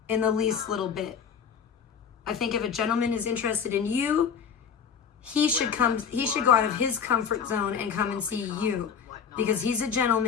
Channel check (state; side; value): quieter; right; 7.0 dB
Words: in the least little bit. I think if a gentleman is interested in you, he should go out of his comfort zone and come and see you. Because he's a